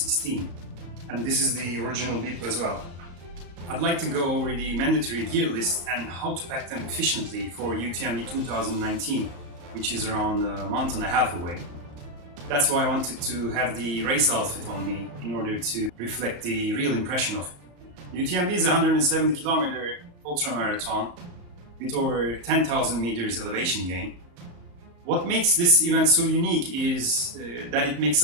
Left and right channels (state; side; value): late; left; 34 ms